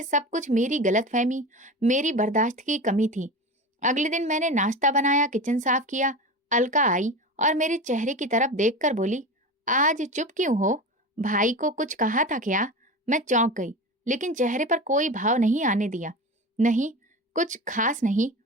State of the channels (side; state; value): both; normal; correlation 0.28